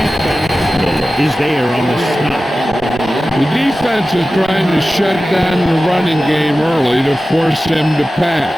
is there on the stop. The defense is trying to shut down the running game early to force him to pass.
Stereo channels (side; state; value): both; normal; correlation 0.95